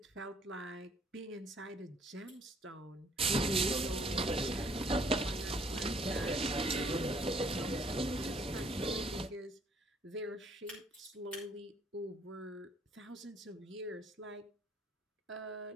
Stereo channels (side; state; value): both; normal; correlation 0.62